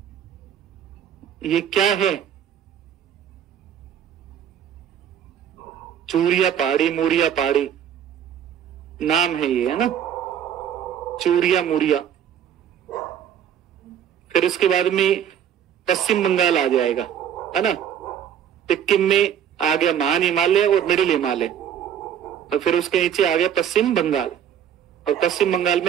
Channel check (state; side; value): quieter; left; 9.4 dB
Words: ये क्या है? चूरिया पहाड़ी, मूरिया पहाड़ी नाम है ये, है ना, चूरिया मूरिया। फिर उसके बाद में पश्चिम बंगाल आ जाएगा, है ना। सिक्किम में आ गया महान हिमालय और मिडिल हिमालय, और फिर उसके नीचे आ गया पश्चिम बंगाल, और पश्चिम बंगाल